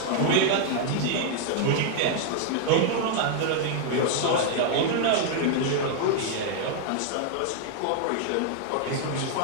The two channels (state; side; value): different; both; correlation 0.00